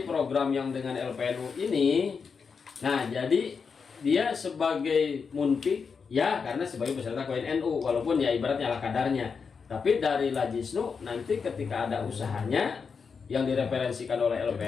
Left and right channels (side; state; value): right; quieter; 5.6 dB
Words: program yang dengan LPNU ini, nah jadi dia sebagai munpik ya karena sebagai peserta koin NU, walaupun ya ibaratnya ala kadarnya, tapi dari Lajisnu nanti ketika ada usahanya yang direferensikan oleh